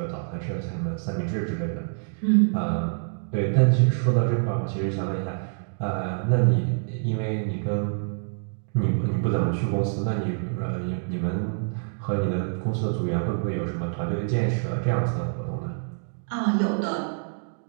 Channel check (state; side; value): silent; left; digital silence